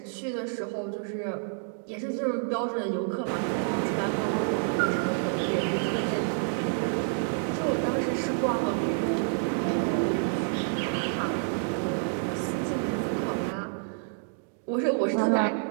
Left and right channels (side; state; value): left; silent; 59 dB below the other